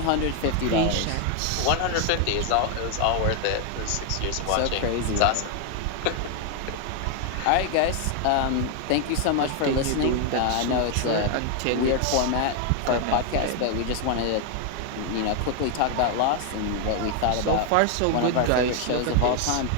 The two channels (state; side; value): different; both; correlation 0.00